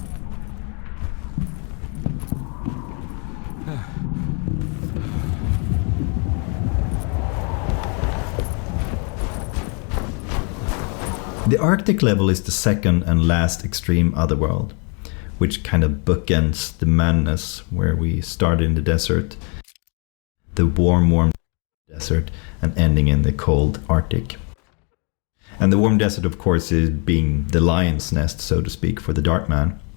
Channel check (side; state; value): right; quieter; 36.6 dB